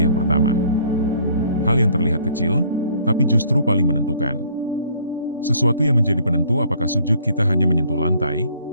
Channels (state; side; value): inverted; both; correlation -0.59